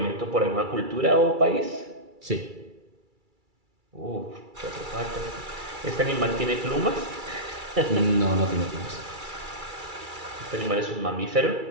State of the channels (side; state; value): left; late; 2.3 ms